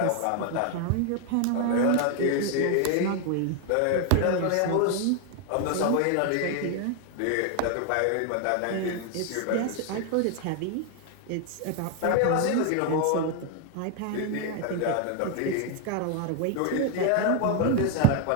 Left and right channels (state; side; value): different; both; correlation 0.00